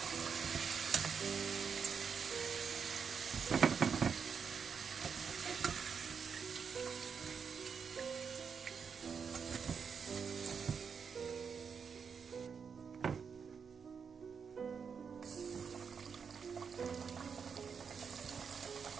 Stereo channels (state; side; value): quieter; left; 6.3 dB